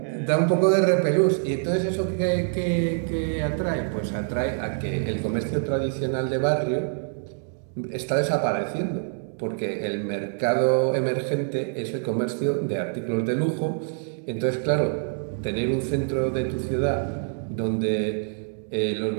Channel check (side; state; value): left; silent; 57 dB below the other